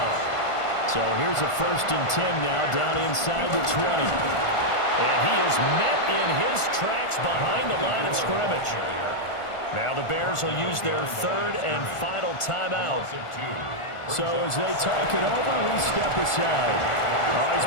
So here's a 1st and 10 now down inside the 20. And he is met in his tracks behind the line of scrimmage. Now the Bears will use their 3rd and final timeout. So as they talk it over, we step aside. Oh,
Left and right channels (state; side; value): late; right; 1.4 ms